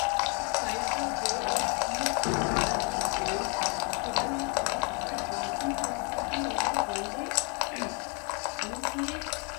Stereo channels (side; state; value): right; quieter; 35.3 dB